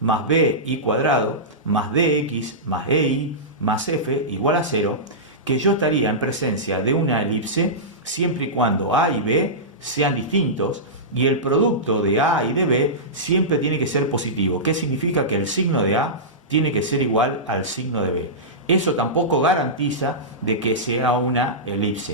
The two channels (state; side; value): normal; both; correlation -0.16